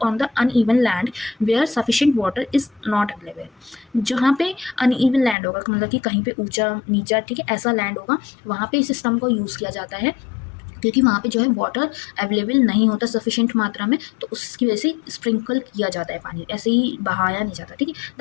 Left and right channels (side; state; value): right; drops out; at 5.4 s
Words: on the uneven land where sufficient water is not available. जहाँ पे अनइवन लैंड होगा, मतलब कि कहीं पे ऊंचा नीचा, ठीक है, ऐसा लैंड होगा, वहाँ पे इस सिस्टम को यूज़ किया जाता है, क्योंकि वहाँ पे जो है वाटर अवेलेबल नहीं होता सफिशिएंट मात्रा में, तो उसकी वजह से स्प्रिंकल किया जाता है पानी, ऐसे ही बहाया नहीं जाता। ठीक है,